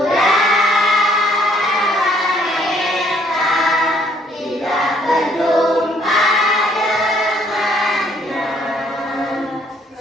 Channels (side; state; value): both; normal; correlation 0.64